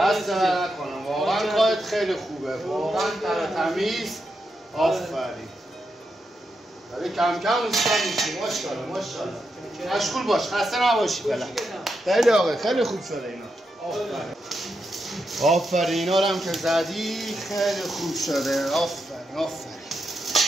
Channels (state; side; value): normal; both; correlation 0.85